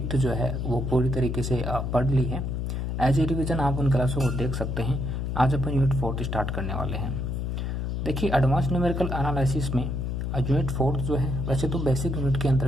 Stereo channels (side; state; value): left; noise; hum, 2 dB below the sound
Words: जो है वो पूरी तरीके से पढ़ ली है। एज ए रिविज़न आप उन क्लासों को देख सकते हैं। आज अपन यूनिट फोर्थ स्टार्ट करने वाले हैं। देखिए, एडवांस न्यूमेरिकल एनालिसिस में यूनिट फोर्थ जो है वैसे तो बेसिक यूनिट के